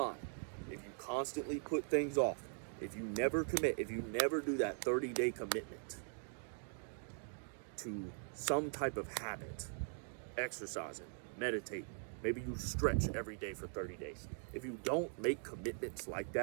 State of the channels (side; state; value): left; silent; 50 dB below the other